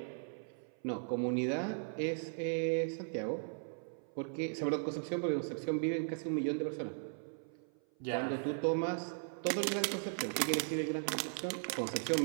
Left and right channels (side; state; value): left; silent; 53 dB below the other